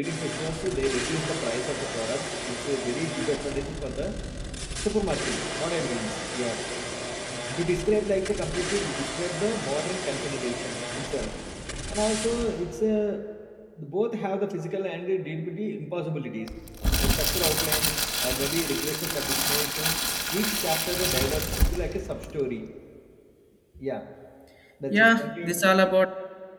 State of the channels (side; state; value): both; identical; correlation 1.00